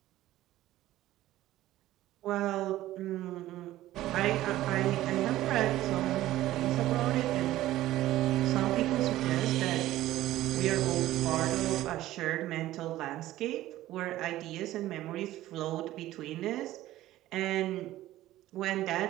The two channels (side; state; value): left; quieter; 15.1 dB